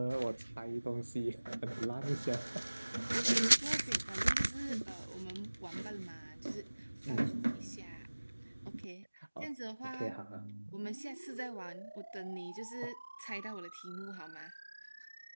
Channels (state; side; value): inverted; both; correlation -1.00